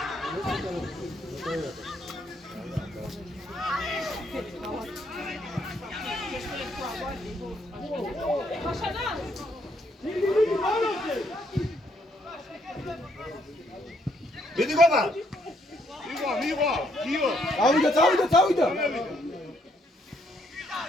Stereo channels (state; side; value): normal; both; correlation 0.71